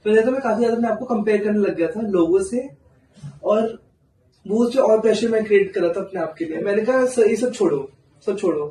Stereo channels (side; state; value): both; identical; correlation 1.00